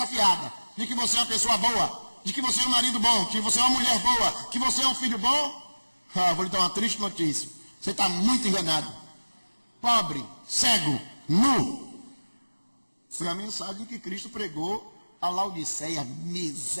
fiada, de que você é uma pessoa boa, de que você é um marido bom, que você é uma mulher boa, que você é um filho bom, vou lhe dar uma triste notícia. Você está muito enganado. Pobre, cego, nu. Foi a mensagem que Cristo pregou a Laodiceia,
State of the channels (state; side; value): inverted; both; correlation -1.00